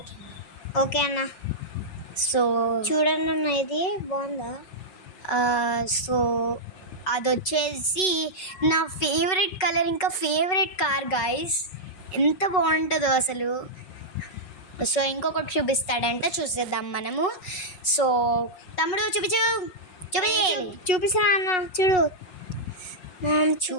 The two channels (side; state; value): right; late; 5.3 ms